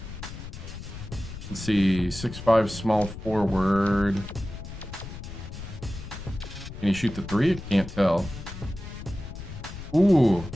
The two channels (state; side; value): noise; left; rumble, 11 dB below the sound